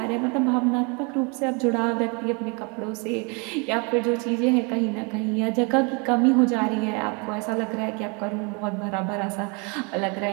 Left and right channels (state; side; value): quieter; left; 32.4 dB